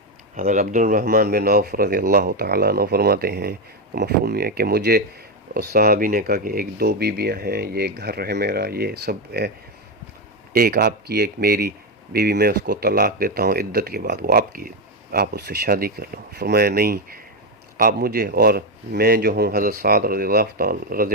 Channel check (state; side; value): normal; both; correlation 0.08